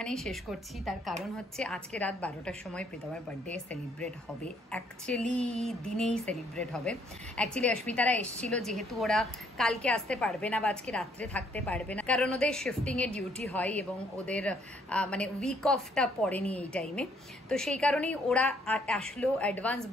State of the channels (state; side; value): normal; both; correlation 0.67